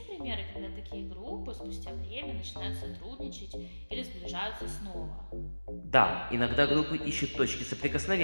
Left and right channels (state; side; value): inverted; both; correlation -1.00